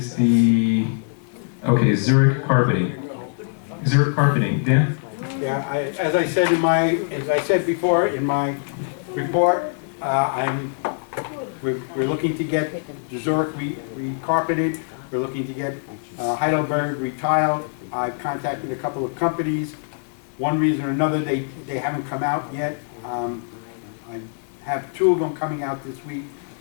Zurich Carpeting. Zurich Carpeting, Dan? Yeah, as I said before in my report, we're looking to get Zurich re-carpeted. We're looking to get Heidelberg retiled. I've contacted a couple of companies. One reason or another, they haven't come out yet. I have 2 of them coming out this week,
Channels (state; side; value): silent; right; digital silence